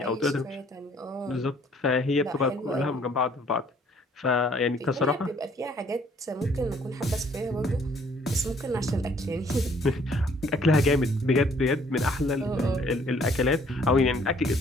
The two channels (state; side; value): normal; both; correlation 0.61